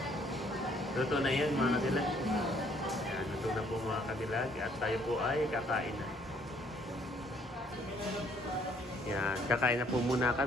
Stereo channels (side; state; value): both; normal; correlation 0.64